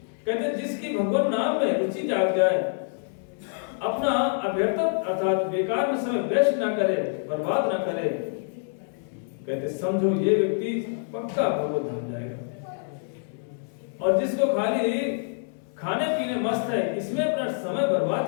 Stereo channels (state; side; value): silent; right; 61 dB below the other